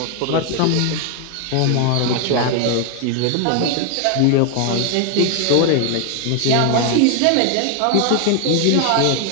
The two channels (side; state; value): both; different; correlation 0.00